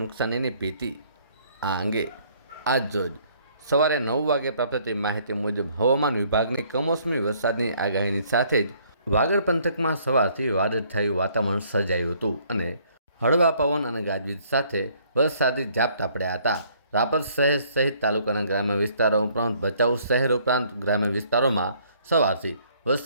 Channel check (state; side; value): inverted; both; correlation -0.63